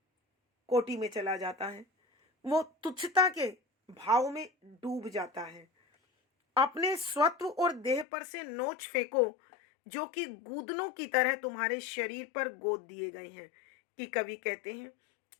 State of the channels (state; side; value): drops out; right; at 8.1 s